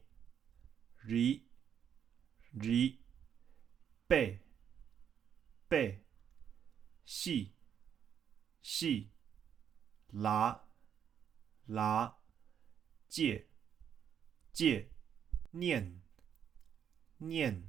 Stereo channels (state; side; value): quieter; left; 8.6 dB